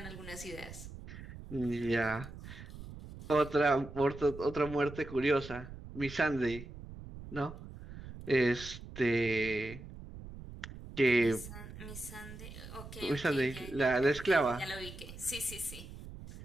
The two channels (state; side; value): noise; right; rumble, 13 dB below the sound